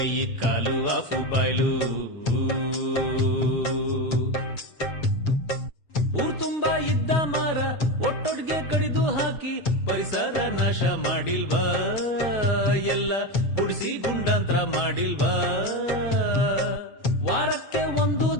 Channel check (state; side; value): late; right; 7.5 ms